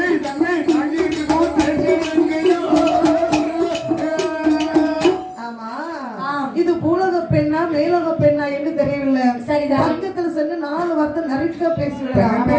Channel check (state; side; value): identical; both; correlation 1.00